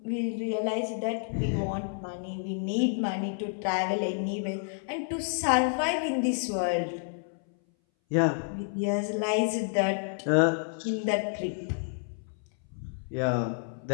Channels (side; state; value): right; silent; 58 dB below the other